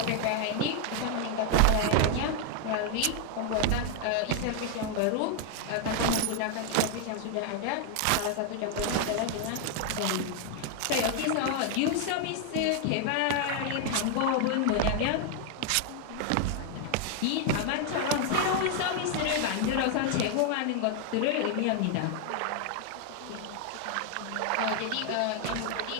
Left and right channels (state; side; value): different; both; correlation 0.00